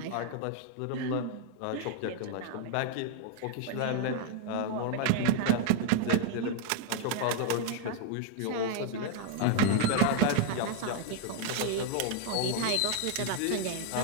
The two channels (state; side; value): different; both; correlation 0.00